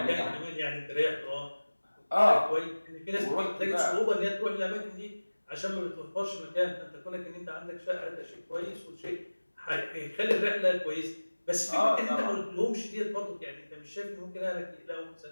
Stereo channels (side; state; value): both; inverted; correlation -1.00